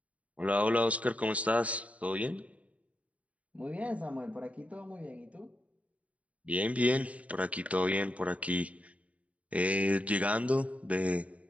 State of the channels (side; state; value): left; late; 0.067 ms